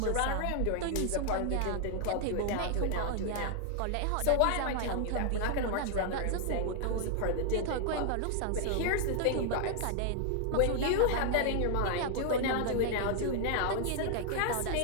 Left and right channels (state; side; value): different; both; correlation 0.00